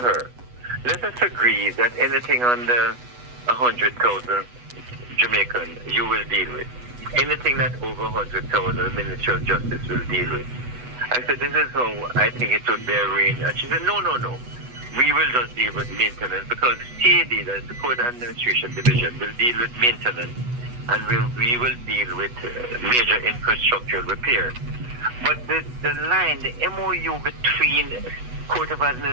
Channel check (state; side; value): late; left; 8.1 ms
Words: let us agree that anything under 100,000 Jamaican you will deal with. Anything that over 100,000 the Ministry of Justice will deal with. I said, this is how I think it would be arranged. And she said, no. We will just deal with maintenance because CAD, that is the Court Administration Division, will deal with maintenance and we will deal with major infrastructural repair. But the line, the MOU between Court of